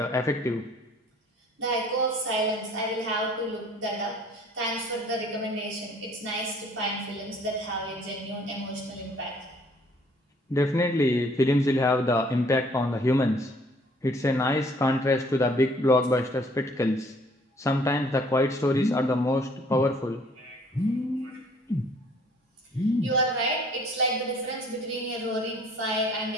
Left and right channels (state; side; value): normal; both; correlation 0.58